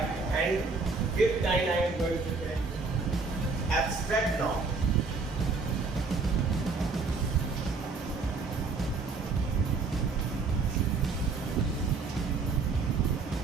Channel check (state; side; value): quieter; left; 4.2 dB